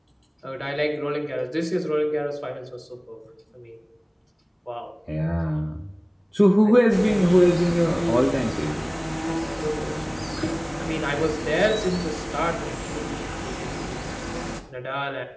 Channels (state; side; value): identical; both; correlation 1.00